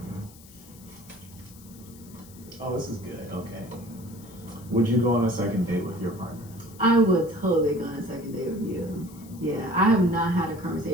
Oh, this is good. Okay. Would you go on a second date with your partner? I would totally go on a second date with you. Yeah, I have not had a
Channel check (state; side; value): noise; left; hiss, 22 dB below the sound